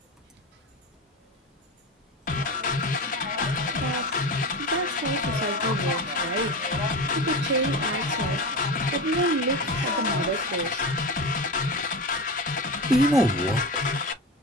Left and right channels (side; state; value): both; normal; correlation 0.24